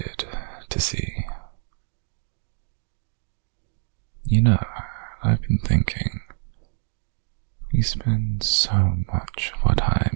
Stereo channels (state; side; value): silent; left; digital silence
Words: to see. You know, I've been thinking, we spend so much of our